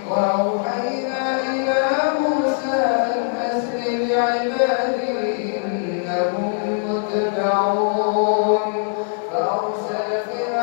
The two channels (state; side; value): silent; right; digital silence